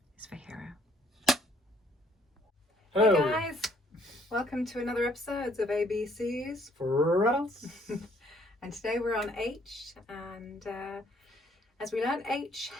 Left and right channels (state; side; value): normal; both; correlation 0.63